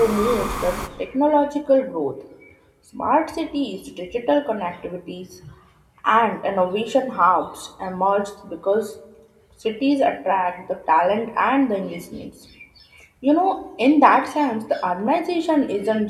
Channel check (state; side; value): identical; both; correlation 1.00